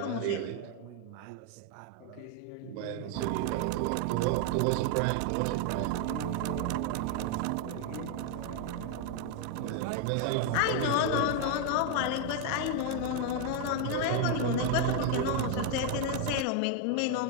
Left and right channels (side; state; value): both; different; correlation 0.00